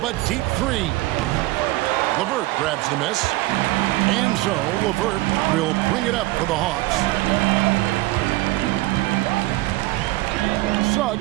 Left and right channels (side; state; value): left; quieter; 19.0 dB